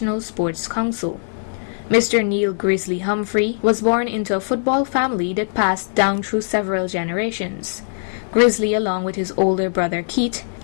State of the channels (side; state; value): right; silent; digital silence